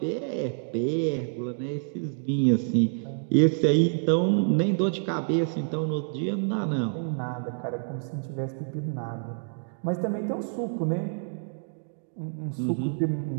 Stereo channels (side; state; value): left; silent; digital silence